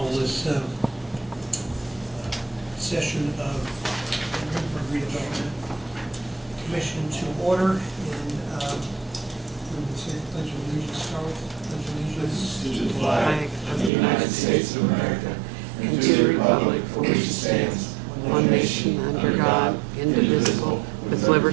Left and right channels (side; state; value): left; drops out; at 13.9 s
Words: this session of the Greensburg Redevelopment Commission to order, and we would say the Pledge of Allegiance, start with Pledge of Allegiance. To the flag of the United States of America, and to the republic for which it stands, one nation under God, indivisible, with